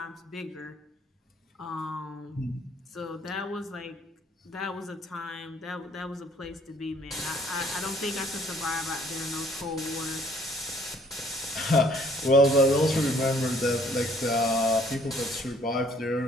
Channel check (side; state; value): both; normal; correlation 0.60